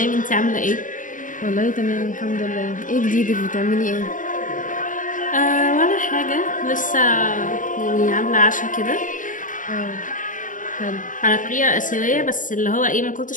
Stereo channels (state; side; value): late; right; 0.38 ms